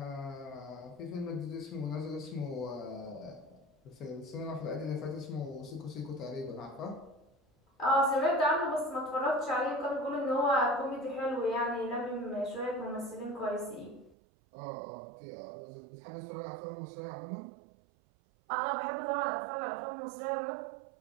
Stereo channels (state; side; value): drops out; left; at 14.2 s